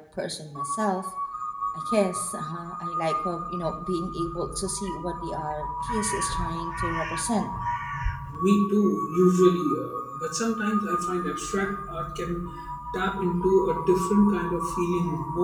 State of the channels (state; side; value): identical; both; correlation 1.00